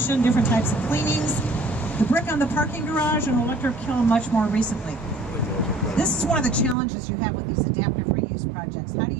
different types of cleanings. The brick on the parking garage and electric kiln much more recently. This is one of the challenges you have with these adaptive reuse projects. How do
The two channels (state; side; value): drops out; left; at 6.8 s